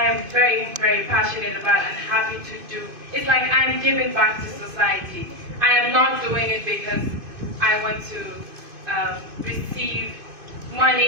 am very, very passionate about and happy to do. It's like I'm giving back to society. I am not doing it because I want to receive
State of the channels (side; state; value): left; late; 2.5 ms